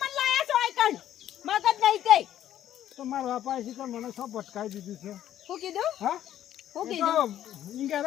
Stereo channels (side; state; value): right; quieter; 11.6 dB